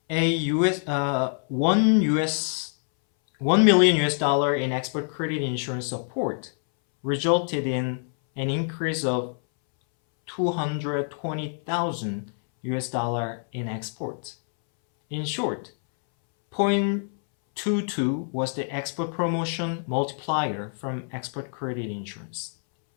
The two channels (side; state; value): right; silent; 60 dB below the other